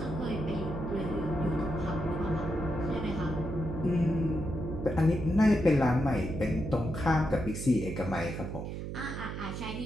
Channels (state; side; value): noise; right; hum, 6 dB below the sound